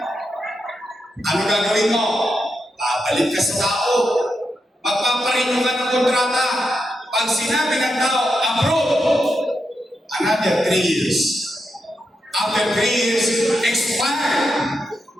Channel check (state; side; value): normal; both; correlation 0.85